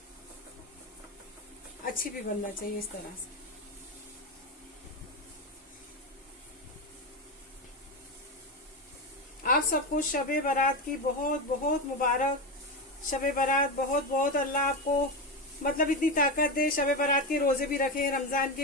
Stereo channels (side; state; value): both; normal; correlation 0.15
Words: अच्छी भी बनना चाहिए इस तरह से। आप सबको शबे बारात की बहुत बहुत मुबारक। शबे बारात बहुत बहुत अल्लाह आपको मतलब इतनी ताकत दे। शबे बारात के रोजे भी रखें, रमजान